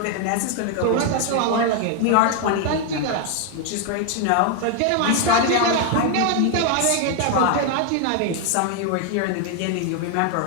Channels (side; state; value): both; different; correlation 0.00